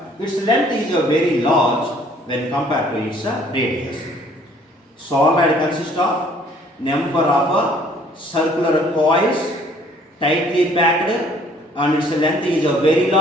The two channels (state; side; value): normal; both; correlation 0.59